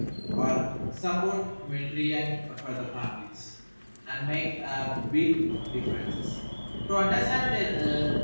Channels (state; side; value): inverted; both; correlation -1.00